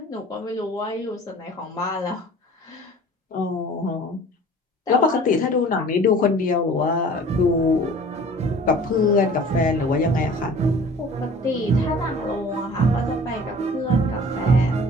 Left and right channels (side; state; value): both; normal; correlation 0.45